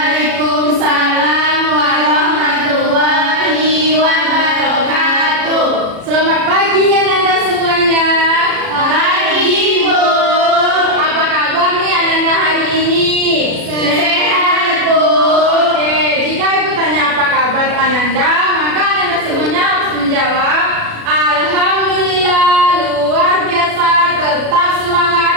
warahmatullahi wabarakatuh. Selamat pagi Ananda semuanya. Pagi, Bu. Apa kabar nih Ananda hari ini? Sehat, Bu. Oke, jika ibu tanya apa kabar Ananda, maka Ananda semuanya harus menjawab Alhamdulillah, luar biasa, tetap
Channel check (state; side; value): late; left; 36 ms